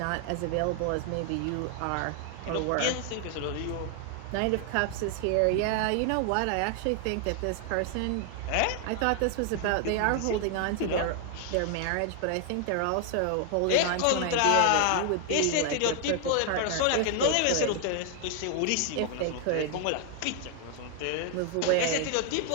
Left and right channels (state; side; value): different; both; correlation 0.00